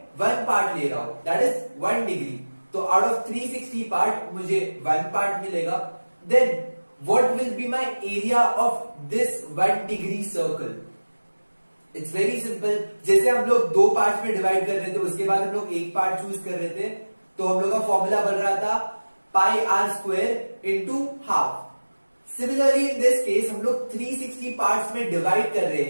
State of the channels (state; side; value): inverted; both; correlation -1.00